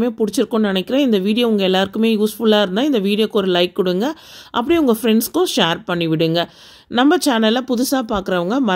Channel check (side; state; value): both; identical; correlation 1.00